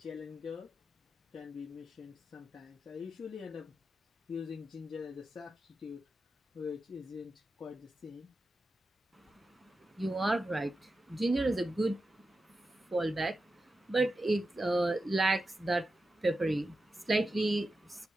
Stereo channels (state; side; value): normal; both; correlation 0.90